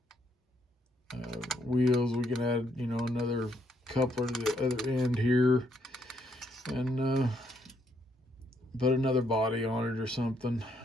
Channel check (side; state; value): both; normal; correlation 0.73